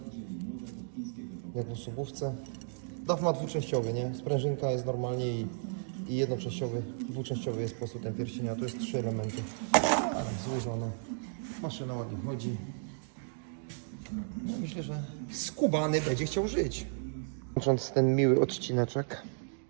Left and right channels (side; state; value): left; silent; digital silence